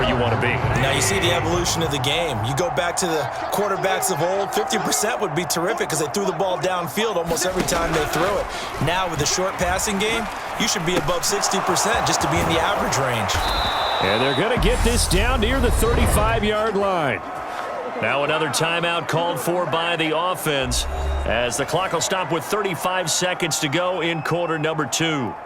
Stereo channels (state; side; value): identical; both; correlation 1.00